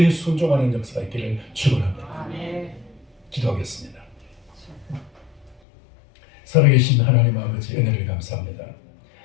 순종하는 역사가 있기를 축원합니다. 기도하겠습니다. 살아계신 하나님 아버지 은혜를 감사합니다.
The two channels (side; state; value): right; drops out; at 5.6 s